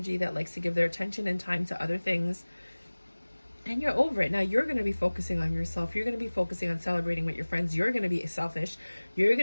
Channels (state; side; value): inverted; both; correlation -1.00